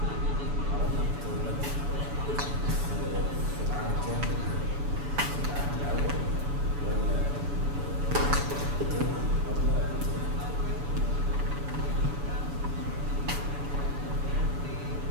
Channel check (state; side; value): late; left; 7.0 ms